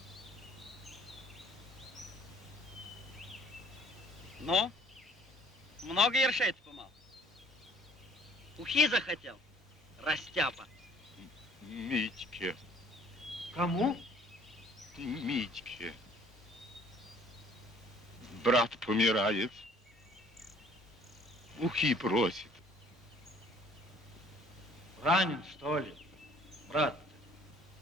Ну? Много ершей ты помал? Ухи захотел? Растяпа. Митьке, Кому? Митьке. Брат помирает. Ухи просит. Ранен, что ли, брат?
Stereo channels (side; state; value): both; normal; correlation 0.56